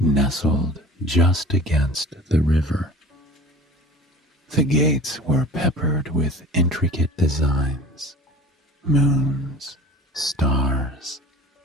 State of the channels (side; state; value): both; normal; correlation 0.42